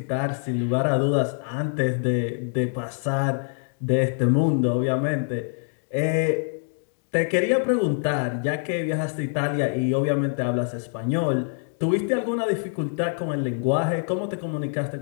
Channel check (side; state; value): right; silent; digital silence